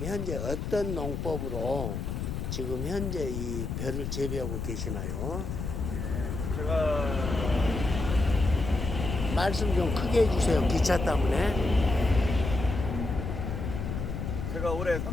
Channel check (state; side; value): noise; left; rumble, 4 dB below the sound